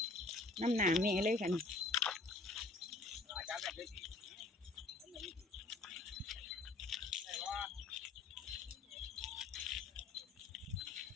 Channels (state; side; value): quieter; right; 3.4 dB